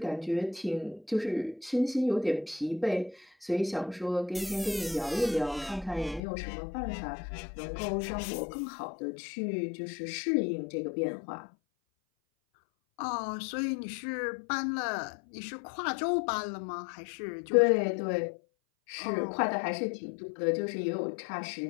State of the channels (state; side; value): drops out; right; at 6.2 s